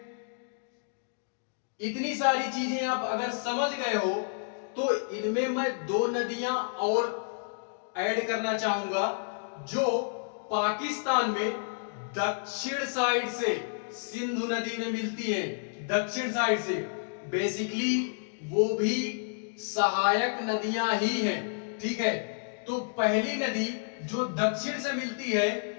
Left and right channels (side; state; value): right; silent; digital silence